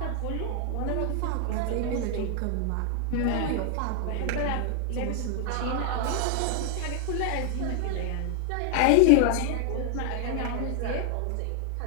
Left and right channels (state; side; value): different; both; correlation 0.00